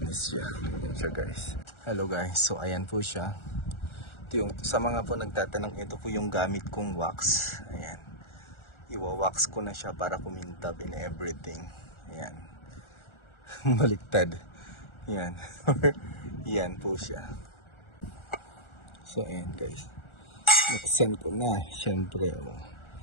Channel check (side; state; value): right; late; 1.4 ms